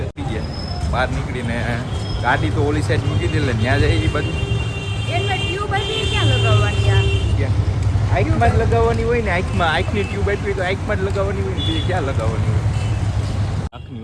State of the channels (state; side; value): identical; both; correlation 1.00